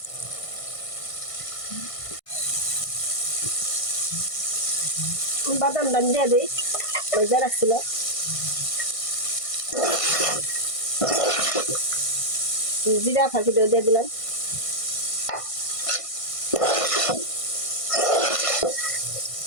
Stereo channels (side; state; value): right; late; 1.5 ms